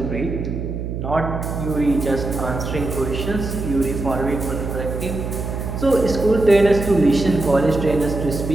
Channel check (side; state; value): right; noise; hum, 5 dB below the sound